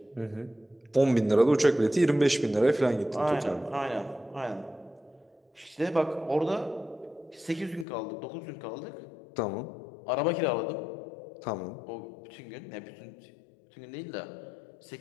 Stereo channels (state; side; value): drops out; right; at 7.9 s